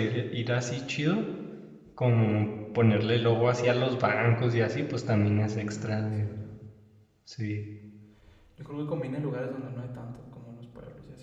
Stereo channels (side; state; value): both; identical; correlation 1.00